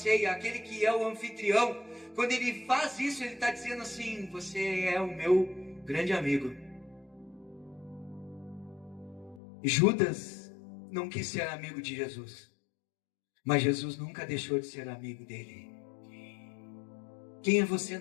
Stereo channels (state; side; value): drops out; right; at 9.4 s